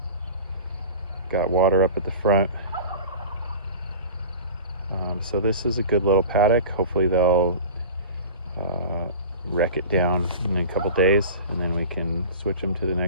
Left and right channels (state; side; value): inverted; both; correlation -0.37